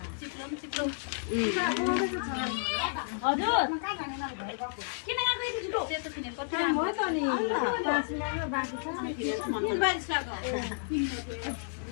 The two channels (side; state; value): right; silent; 57 dB below the other